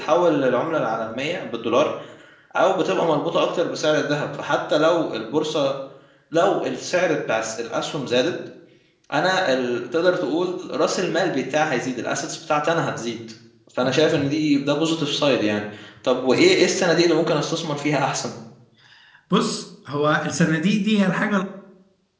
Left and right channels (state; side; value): identical; both; correlation 1.00